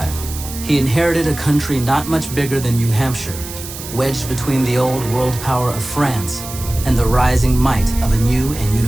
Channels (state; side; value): noise; right; hiss, 11 dB below the sound